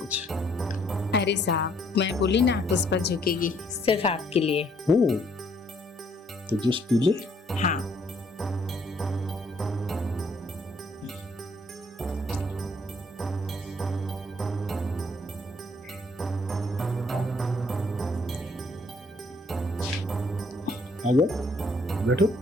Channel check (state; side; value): normal; both; correlation 0.66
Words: अरे साहब, मैं बोली ना पुष्पा झुकेगी, सिर्फ आपके लिए। तो जूस पी ले। हाँ। आजा, बैठो।